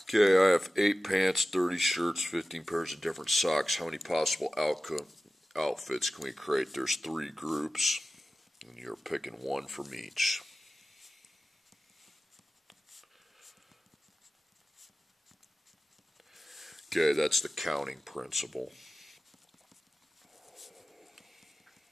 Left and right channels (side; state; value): both; normal; correlation 0.96